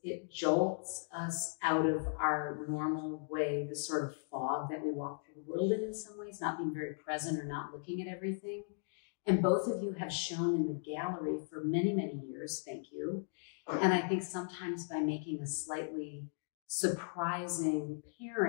it jolts us out of our normal way, the sort of fog that we walk through the world in some ways, not being very present or not looking at everything. And both of you have shown in the gallery for many, many years, thank you. And I think sometimes by making a slightly surprising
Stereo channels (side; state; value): right; silent; digital silence